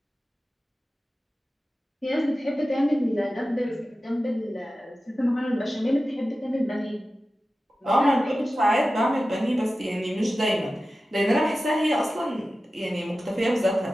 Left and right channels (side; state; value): both; normal; correlation 0.94